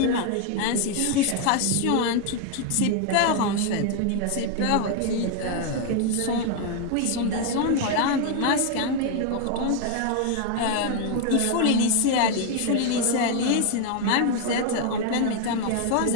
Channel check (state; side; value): different; both; correlation 0.00